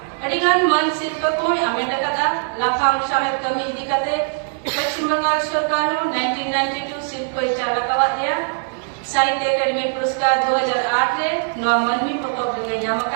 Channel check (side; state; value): left; silent; 65 dB below the other